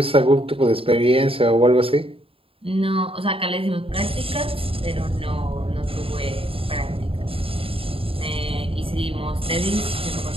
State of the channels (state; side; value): late; left; 0.27 ms